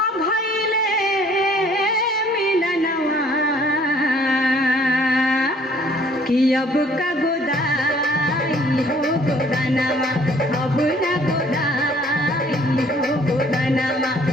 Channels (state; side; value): normal; both; correlation 0.59